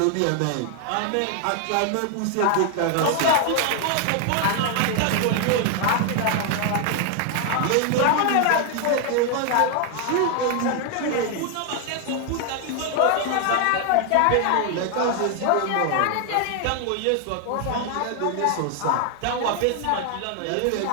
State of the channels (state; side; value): different; both; correlation 0.00